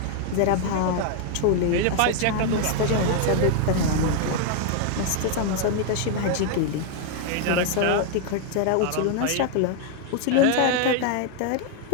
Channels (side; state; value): both; different; correlation 0.00